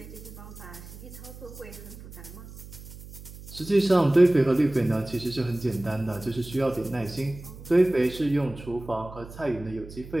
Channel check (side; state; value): right; noise; hum, 15 dB below the sound